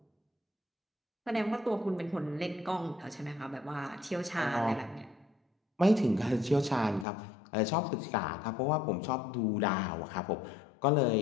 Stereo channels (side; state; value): right; drops out; at 7.1 s